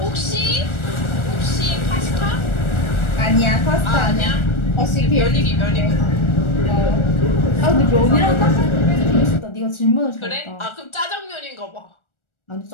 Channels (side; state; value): right; late; 1.4 ms